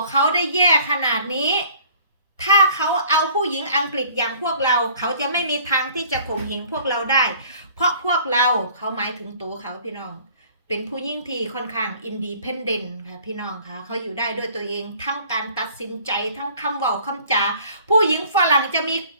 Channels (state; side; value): inverted; both; correlation -0.53